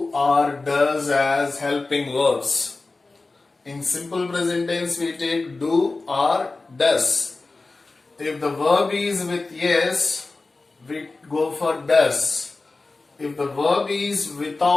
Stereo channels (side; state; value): right; quieter; 3.5 dB